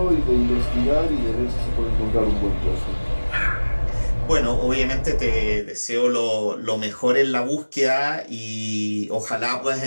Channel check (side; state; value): both; inverted; correlation -1.00